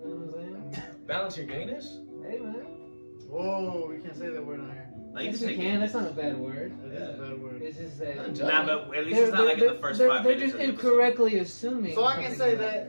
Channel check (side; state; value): both; inverted; correlation -1.00